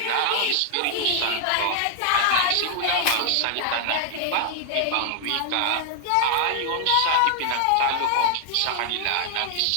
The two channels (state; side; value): different; both; correlation 0.00